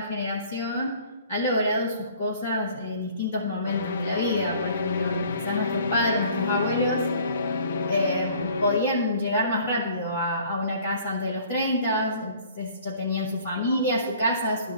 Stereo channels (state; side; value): inverted; both; correlation -0.53